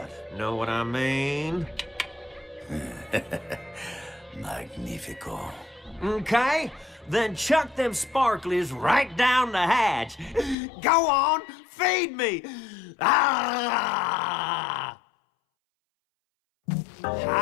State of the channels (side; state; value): right; drops out; at 10.6 s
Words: Know what I mean? Magnifico. Okay, then chuck them sparklies right down the hatch. Go on, feed me! Ah!